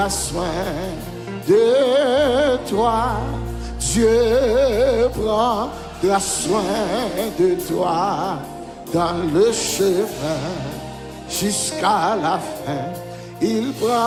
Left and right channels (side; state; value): both; identical; correlation 1.00